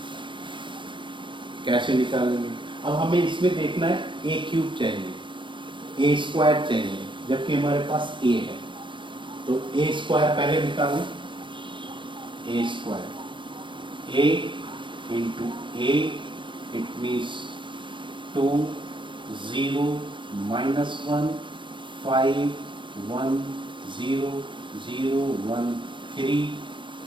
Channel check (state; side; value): late; left; 0.24 ms